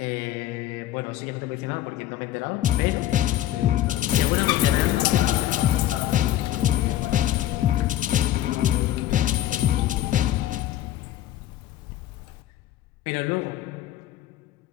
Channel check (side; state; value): right; quieter; 13.1 dB